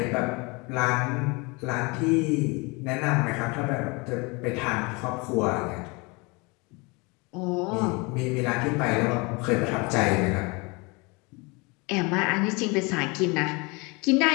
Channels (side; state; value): right; quieter; 27.7 dB